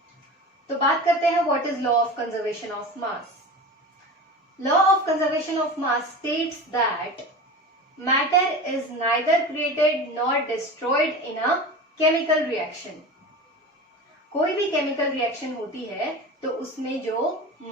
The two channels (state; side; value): normal; both; correlation 0.31